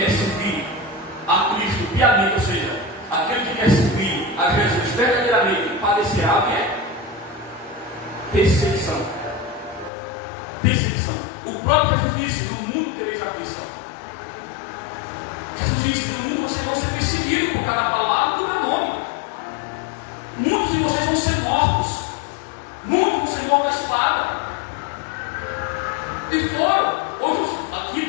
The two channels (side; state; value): right; drops out; at 9.9 s